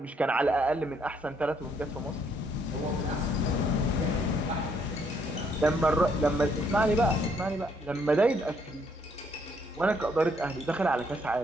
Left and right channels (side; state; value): both; normal; correlation 0.70